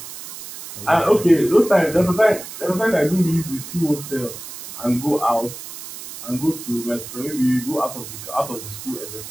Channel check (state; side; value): noise; right; hiss, 12 dB below the sound